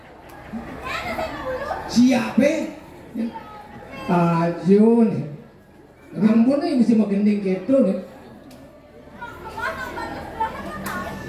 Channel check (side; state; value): both; identical; correlation 1.00